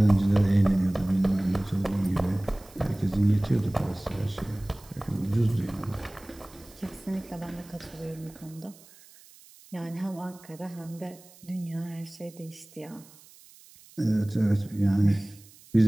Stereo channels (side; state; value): right; noise; hiss, 24 dB below the sound